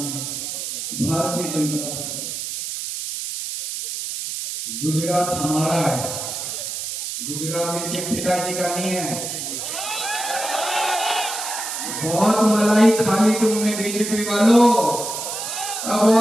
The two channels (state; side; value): noise; right; hiss, 5 dB below the sound